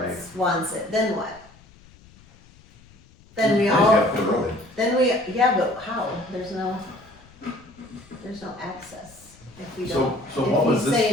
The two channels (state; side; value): noise; left; rumble, 25 dB below the sound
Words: it, then what? Then we They all, have the road. yeah, but how? There's no access if we don't. So what was If he's this,